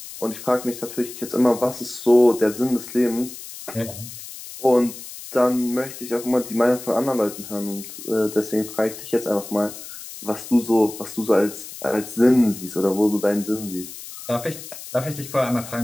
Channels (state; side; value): noise; left; hiss, 13 dB below the sound